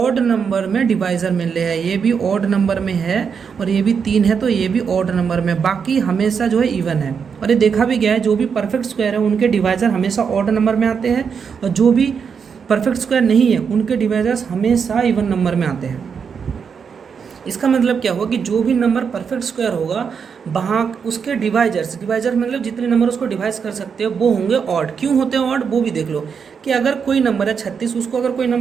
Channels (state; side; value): quieter; left; 6.4 dB